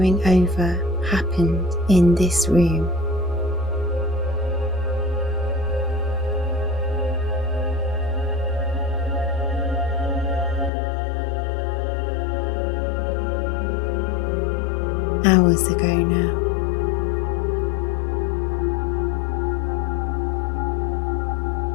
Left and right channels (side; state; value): right; drops out; at 10.7 s